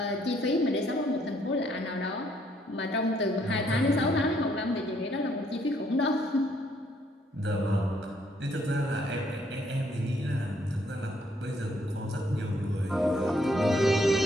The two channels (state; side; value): normal; both; correlation 0.69